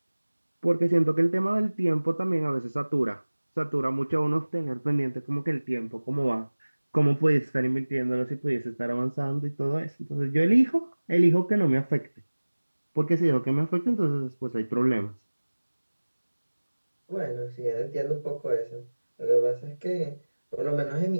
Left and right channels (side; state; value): both; inverted; correlation -1.00